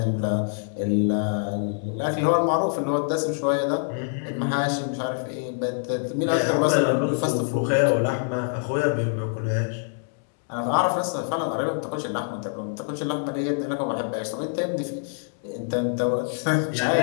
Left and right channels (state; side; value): silent; right; digital silence